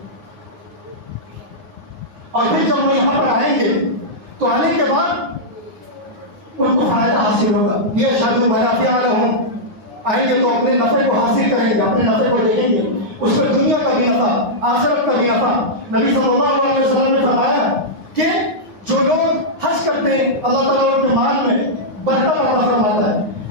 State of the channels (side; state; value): left; late; 9.7 ms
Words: اور پھر جب وہ یہاں پر آئیں گے تو آنے کے بعد ان کو فائدہ حاصل ہوگا. یہ شادو منافع لہم, آئیں گے تو اپنے نفع کو حاصل کریں گے, اپنے نفع کو دیکھیں گے, اس پر دنیا کا بھی نفع, آخرت کا بھی نفع. نبی صلی اللہ علیہ وسلم نے فرمایا کہ جو لوگ حج کرتے ہیں اللہ تعالیٰ ان کے مال میں برکت عطا فرماتا ہے.